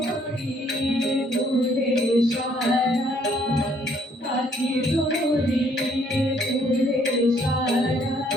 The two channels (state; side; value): normal; both; correlation 0.65